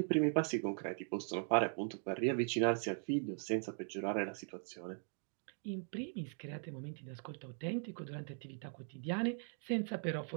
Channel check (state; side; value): silent; left; 51 dB below the other